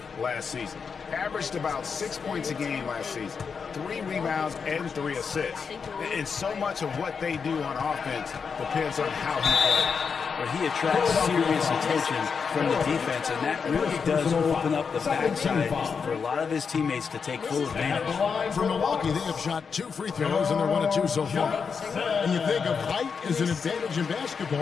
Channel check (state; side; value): quieter; right; 5.9 dB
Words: last season. Averaged about 6 points a game last season. 3 rebounds and 3 assists. And so much of what they do on offense depends on how he plays. But he attracts serious attention from the defense, and that really does open up the backside for a lot of his teammates to take full advantage. For Milwaukee, they have shot 2 free throws, and they're 1 of 2 so far. And you think of height as an advantage in